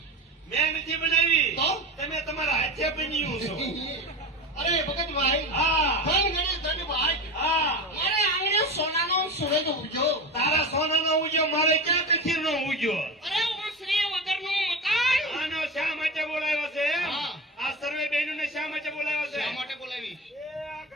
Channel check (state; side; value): normal; both; correlation 0.26